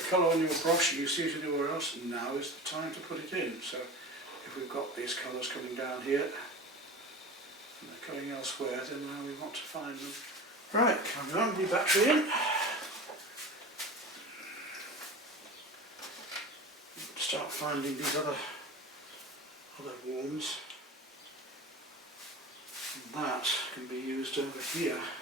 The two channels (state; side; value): normal; both; correlation 0.33